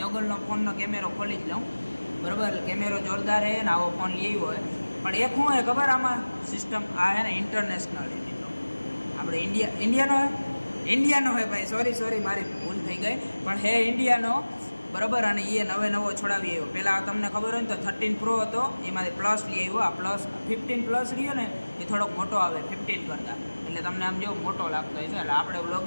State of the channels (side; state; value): both; inverted; correlation -1.00